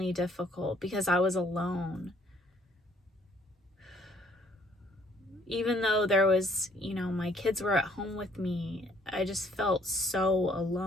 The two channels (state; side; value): normal; both; correlation 0.63